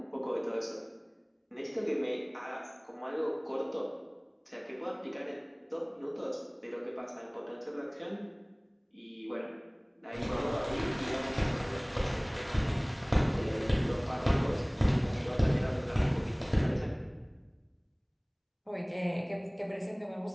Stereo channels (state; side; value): identical; both; correlation 1.00